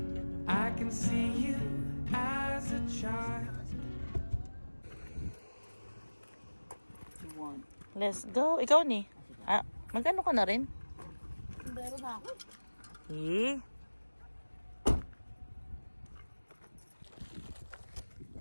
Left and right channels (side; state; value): both; inverted; correlation -1.00